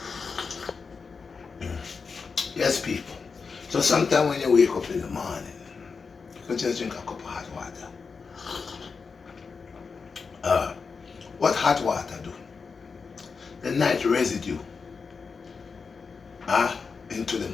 Yes, people. So sometimes when you wake up in the morning, you can just drink a cup of hot water. What hot water do? The night residue into the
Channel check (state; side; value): quieter; right; 5.1 dB